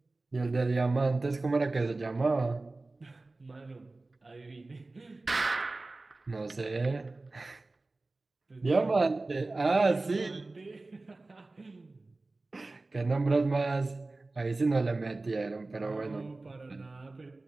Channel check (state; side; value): quieter; left; 3.2 dB